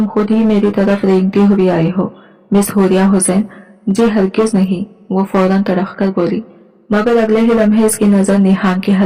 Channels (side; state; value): both; identical; correlation 1.00